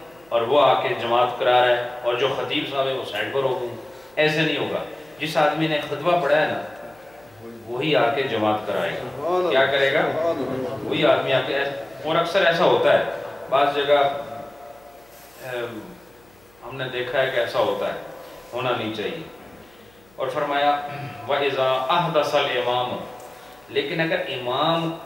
اور وہ آ کے جماعت کرا رہا ہے، اور جو خطیب صاحب ہے وہ سائڈ پر ہو گئے۔ ایسے نہیں ہوگا، جس آدمی نے خطبہ پڑھا ہے نا وہی آ کے جماعت کرائے گا۔ کیا کرے گا؟ وہی آدمی آ کے، اور اکثر ایسا ہوتا ہے، بعض جگہ ہم نے دیکھا ہے کہ ایسا ہوتا ہے، ہونا نہیں چاہیے۔ اور فرمایا وَإِذَا أَحْدَثَ الْإِمَامُ، لیکن اگر امام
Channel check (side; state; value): left; noise; hum, 30 dB below the sound